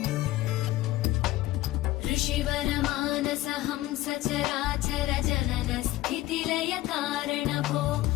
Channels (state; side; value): quieter; right; 16.5 dB